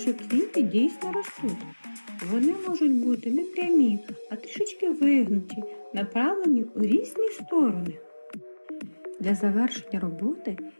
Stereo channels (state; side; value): inverted; both; correlation -1.00